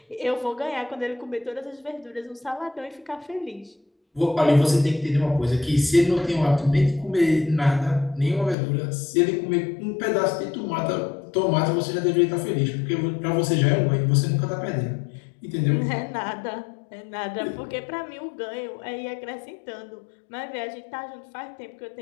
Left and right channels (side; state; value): right; drops out; at 8.6 s